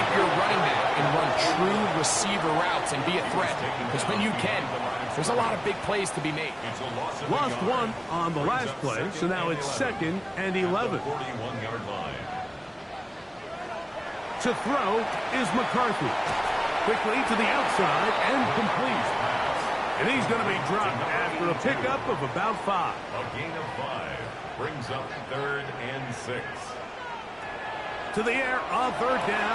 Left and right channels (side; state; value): both; identical; correlation 1.00